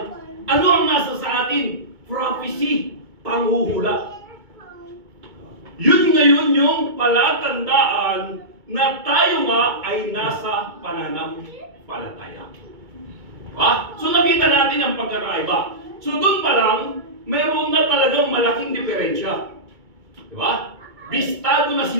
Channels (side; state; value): left; late; 2.2 ms